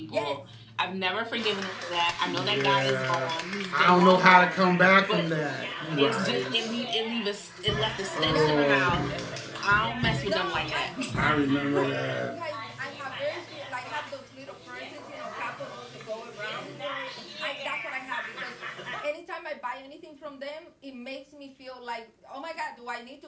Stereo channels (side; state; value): both; identical; correlation 1.00